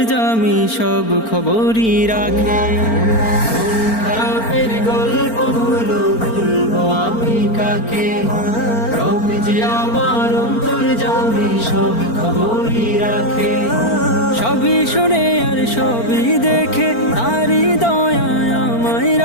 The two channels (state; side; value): late; right; 4.4 ms